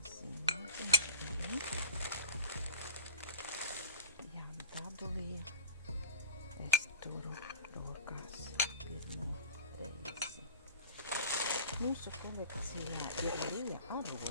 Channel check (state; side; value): inverted; both; correlation -0.36